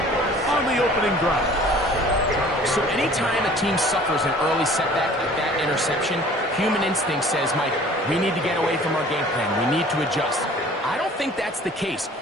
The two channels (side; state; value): both; normal; correlation 0.49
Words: on the opening drive. So anytime a team suffers an early setback like that interception, human instinct says, Mike, we need to get away from our game plan. We need to adjust. I don't think that's the case.